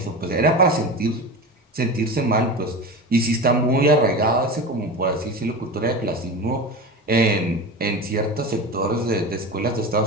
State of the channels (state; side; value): normal; both; correlation 0.27